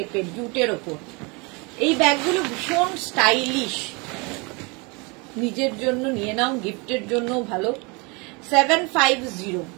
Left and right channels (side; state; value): left; quieter; 29.2 dB